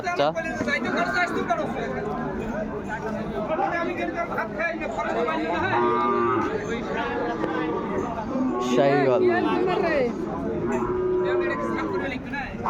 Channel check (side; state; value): both; identical; correlation 1.00